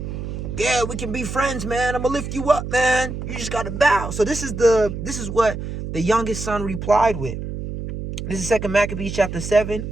Yeah, we can be friends, man. I'm gonna lift you up, man. You just gotta bow. So this is what the youngest son replied with. This is 2 Maccabees chapter 7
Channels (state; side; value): noise; right; hum, 6 dB below the sound